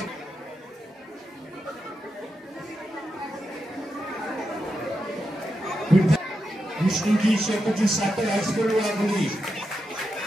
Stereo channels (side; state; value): both; normal; correlation 0.87